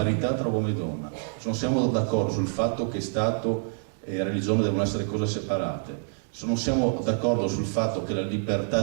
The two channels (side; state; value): left; silent; digital silence